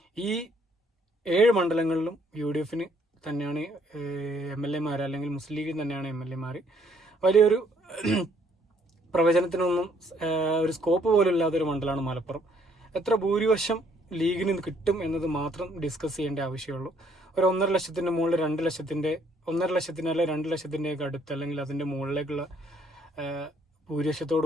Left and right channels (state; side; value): normal; both; correlation 0.66